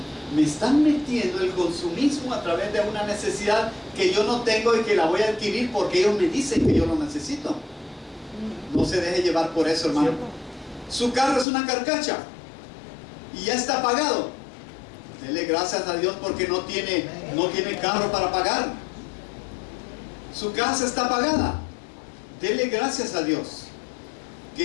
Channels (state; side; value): drops out; right; at 11.5 s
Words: Me están metiendo el consumismo a través de una necesidad que yo no tengo y que la voy a adquirir porque ellos me dicen que yo lo necesito. No se deje llevar por eso, hermano. Su carro es una carcacha y ya está pagado. Dele gracias a Dios porque no tiene carro para pagar. Su casa está pagada. Dele gracias a Dios